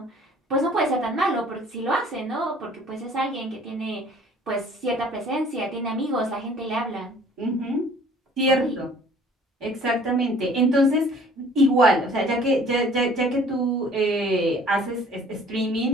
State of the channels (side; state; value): both; normal; correlation 0.53